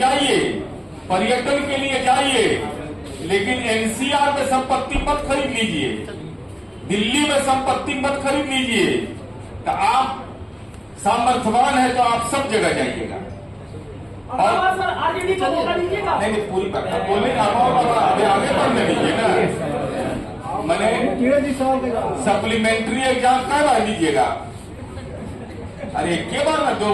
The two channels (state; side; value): identical; both; correlation 1.00